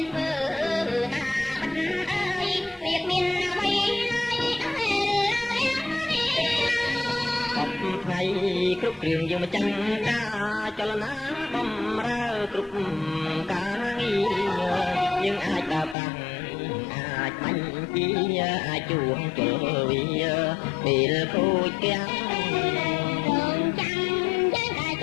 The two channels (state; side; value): drops out; right; at 16.0 s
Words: នធ្វើណាបាត់អើយវាមានអ្វីថ្ងៃគ្រប់គ្រឿងយើងមកចាំការចលនាបំរើគ្រប់ការងារយើងអាចដើរតាំងអាចបាញ់ពីអាចជួងជលវាពេលគូចទាំងរងចាំយើងតែ